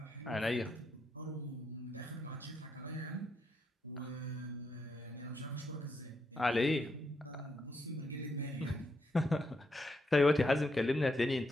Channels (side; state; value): both; normal; correlation 0.80